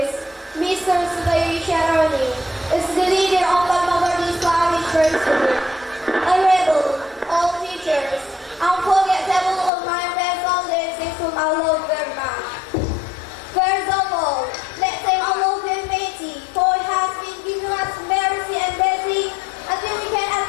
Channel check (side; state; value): right; drops out; at 9.7 s